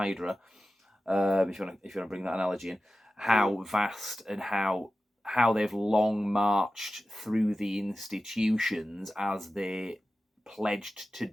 If you want to bring that analogy in, how vast and how they've long marched through the institutions as they pledged to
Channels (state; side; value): normal; both; correlation 0.94